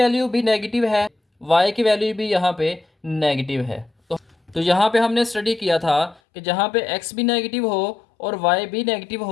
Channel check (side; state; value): right; drops out; at 6.2 s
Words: भी नेगेटिव है वाई की वैल्यू भी यहाँ पे नेगेटिव है। तो यहाँ पे हमने स्टडी किया था कि जहाँ पे एक्स भी नेगेटिव हो और वाई भी नेगेटिव